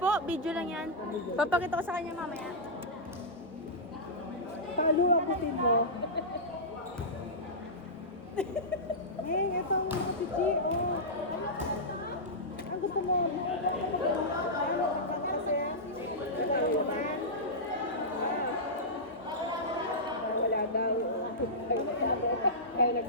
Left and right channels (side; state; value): both; normal; correlation -0.13